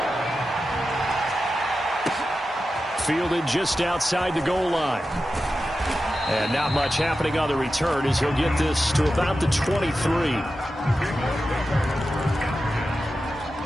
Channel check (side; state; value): both; normal; correlation 0.92